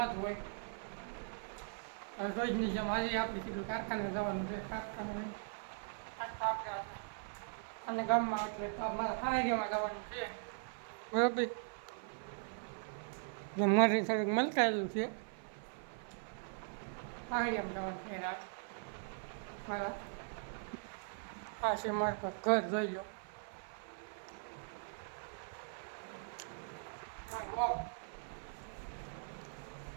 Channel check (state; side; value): silent; left; 51 dB below the other